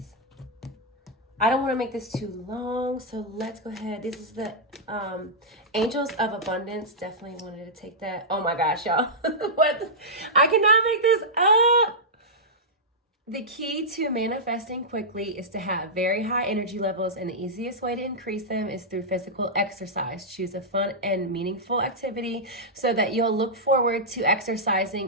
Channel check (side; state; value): both; normal; correlation -0.10